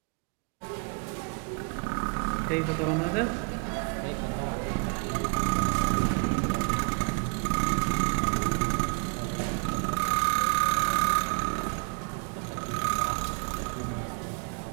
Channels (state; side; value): quieter; left; 38.1 dB